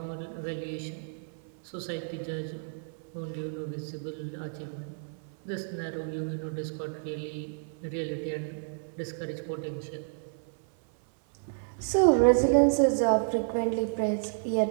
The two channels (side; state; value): left; silent; 57 dB below the other